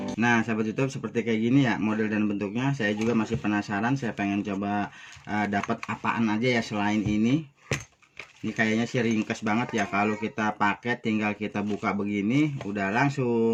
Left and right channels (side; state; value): both; identical; correlation 1.00